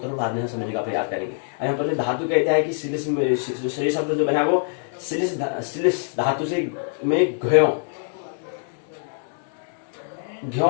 बाद में समझने का प्रयास करेंगे। यहाँ पर धातु कहता है कि श्लेष शब्द जो बना वो श्लेष धातु से में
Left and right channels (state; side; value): silent; right; digital silence